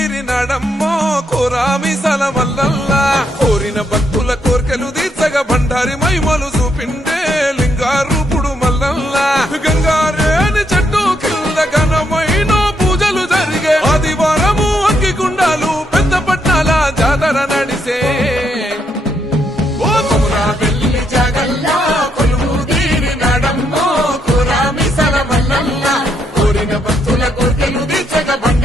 కోరామిసల మల్లల్లా కోరిన భక్తుల కోర్కెలు తీర్చగా బండారి మైమలు చూపిండే లింగారూపుడు మల్లల్లా గంగారేని చెట్టు కింద ఘనమైన పూజలు జరిగే ఆదివారము అగ్గిగుండాలు పెద్ద పట్నాల జాతర నడిసే ఓ కొమురా వెల్లి జాగల్లా కొలువు తీరినాడమ్మో కోరామిసల మల్లల్లా కోరిన భక్తుల కోర్కెలు తీర్చగా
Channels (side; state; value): both; normal; correlation 0.77